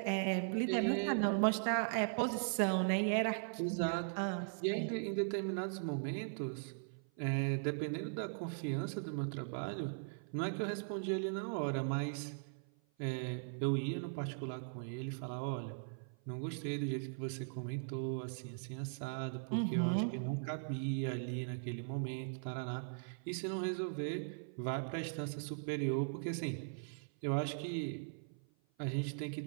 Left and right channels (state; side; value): silent; left; 51 dB below the other